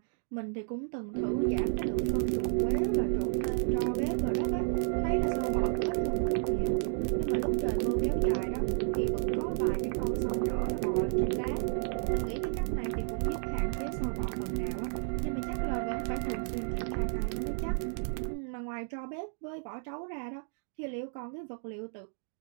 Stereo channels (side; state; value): left; silent; 57 dB below the other